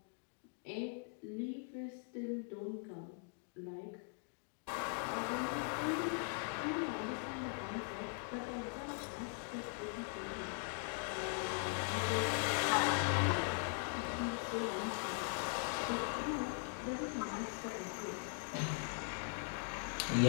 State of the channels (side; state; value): right; silent; 51 dB below the other